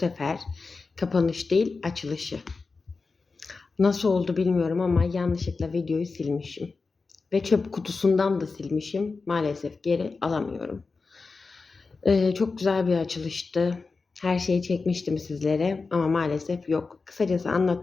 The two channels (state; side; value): quieter; right; 4.2 dB